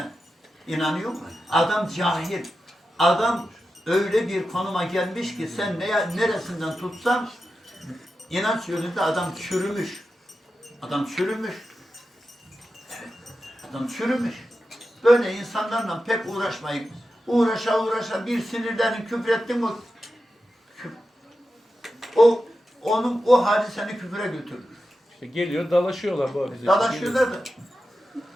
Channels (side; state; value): both; normal; correlation 0.91